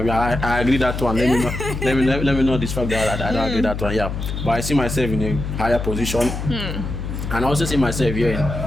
I agree that one. Let me know this fact that I don't agree that one, yeah. But I see myself in a higher position. And I also see myself here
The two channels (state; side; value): noise; left; hum, 5 dB below the sound